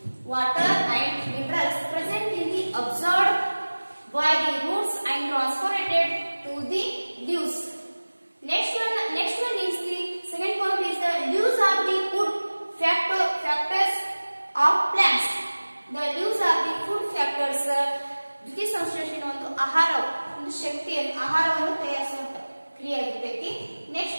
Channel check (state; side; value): inverted; both; correlation -1.00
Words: Water and minerals present in the absorbed by the roots and transported to the leaves. Next one is the second point is the leaves are the food factors of plants. The leaves are the food factors. ದ್ವಿತೀಯ ಸಂಶ್ಲೇಷಣೆ ಒಂದು ಆಹಾರ, ಒಂದು ಶಕ್ತಿಯನ್ನು ಆಹಾರವನ್ನು ತಯಾರಿಸುವಂತ ಕ್ರಿಯೆ ಆಗಿರ್ತೈತಿ.